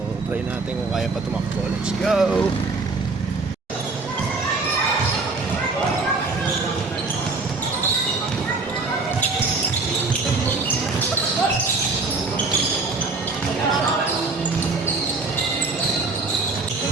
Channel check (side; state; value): left; quieter; 3.8 dB